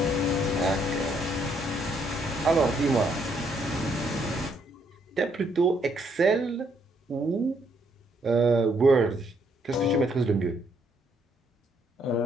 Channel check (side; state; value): both; normal; correlation 0.71